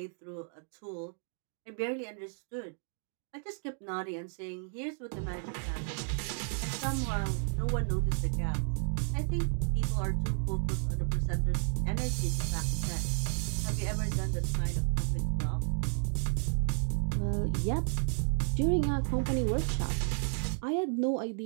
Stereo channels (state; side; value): silent; left; 56 dB below the other